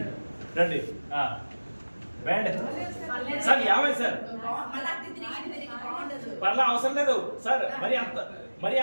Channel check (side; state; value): both; inverted; correlation -1.00